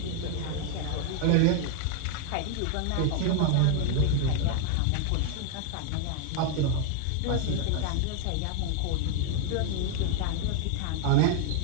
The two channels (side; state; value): both; different; correlation 0.00